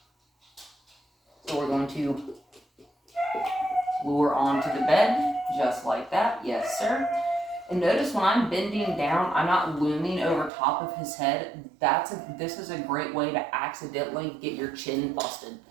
So we're going to lure onto the bed, just like that. Yes, sir. And notice when I'm bending down, I'm not looming over top of his head. This is a great way to accidentally get your chin busted,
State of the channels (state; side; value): drops out; left; at 10.5 s